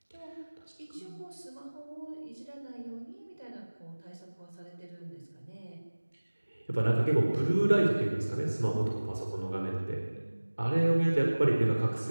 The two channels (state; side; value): inverted; both; correlation -1.00